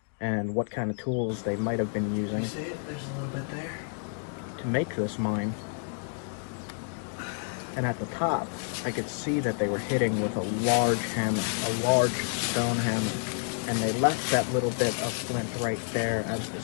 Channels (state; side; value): silent; right; 58 dB below the other